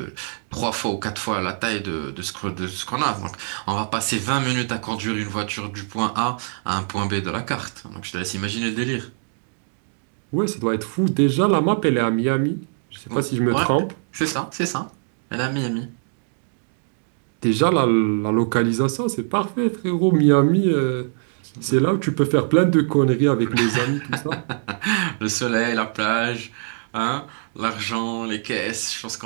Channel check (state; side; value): silent; left; digital silence